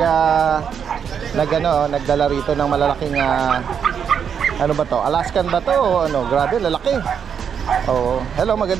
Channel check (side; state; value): left; quieter; 7.5 dB